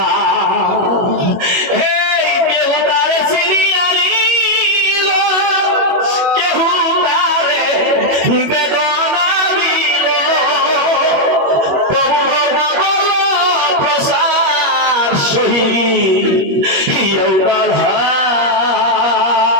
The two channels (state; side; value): late; left; 21 ms